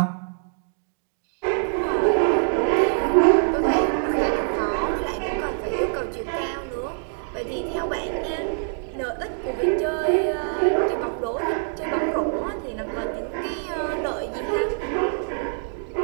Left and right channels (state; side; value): silent; left; digital silence